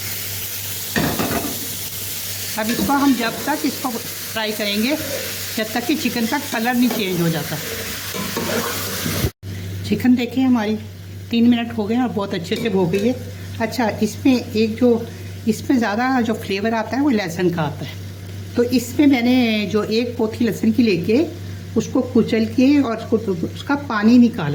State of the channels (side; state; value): both; identical; correlation 1.00